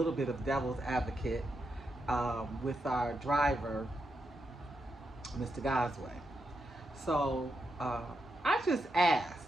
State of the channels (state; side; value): normal; both; correlation 0.85